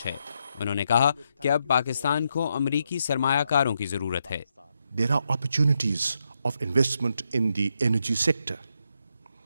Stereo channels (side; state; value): both; inverted; correlation -0.82